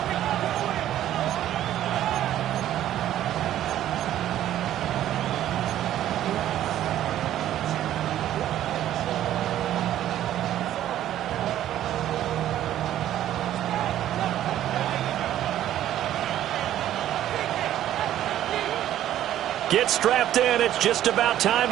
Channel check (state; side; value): quieter; left; 12.2 dB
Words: Get strapped in. It's just about time